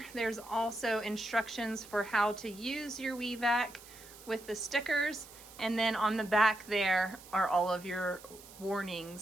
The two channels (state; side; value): noise; right; hiss, 19 dB below the sound